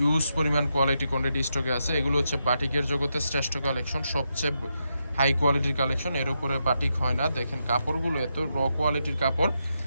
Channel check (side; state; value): both; inverted; correlation -0.84